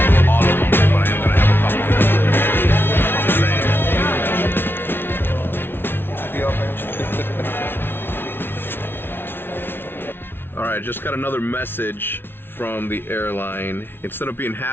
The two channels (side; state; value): right; late; 0.11 ms